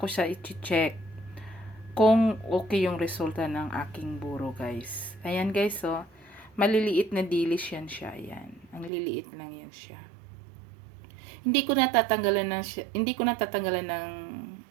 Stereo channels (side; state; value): left; drops out; at 8.9 s